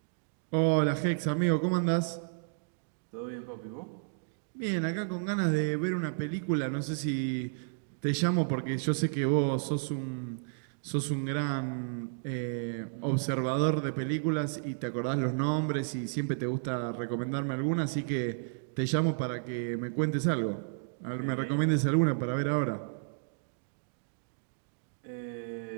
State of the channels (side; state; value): left; silent; digital silence